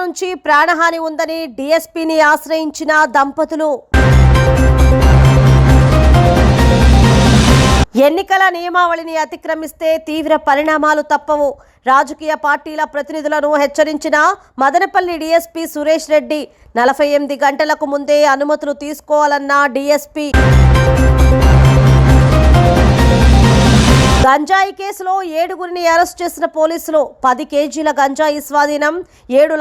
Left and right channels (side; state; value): both; identical; correlation 1.00